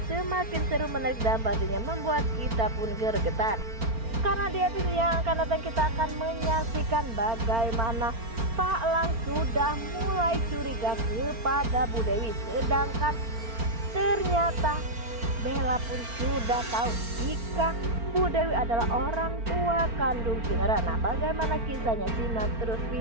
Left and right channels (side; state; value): left; late; 4.4 ms